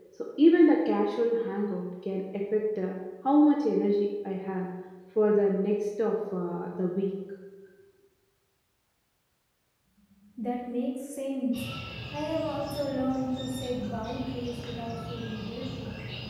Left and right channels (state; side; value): identical; both; correlation 1.00